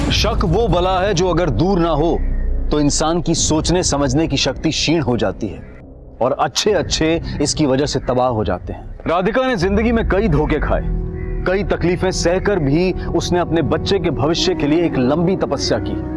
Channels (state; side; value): identical; both; correlation 1.00